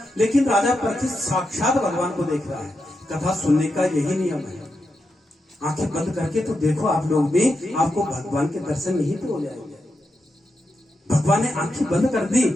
लेकिन राजा परीक्षित साक्षात भगवान को देख रहा है। कथा सुनने का यही नियम है, आंखें बंद करके तो देखो आप लोग भी, आपको भगवान के दर्शन यहीं पे हो जाएंगे। भगवान ने आंखें बंद कर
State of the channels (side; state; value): both; normal; correlation 0.86